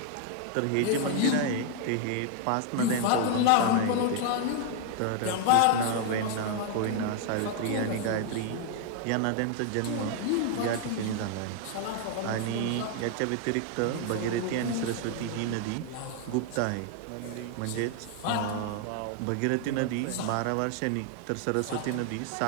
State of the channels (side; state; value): both; different; correlation 0.00